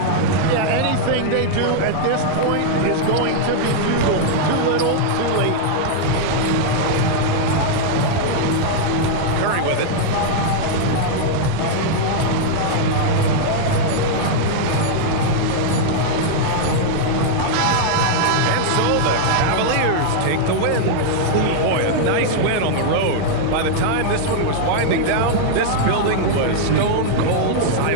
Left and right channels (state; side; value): different; both; correlation -0.01